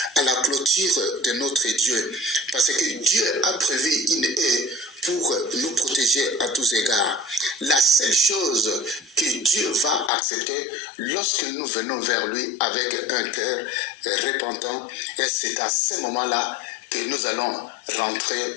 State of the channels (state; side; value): drops out; right; at 10.1 s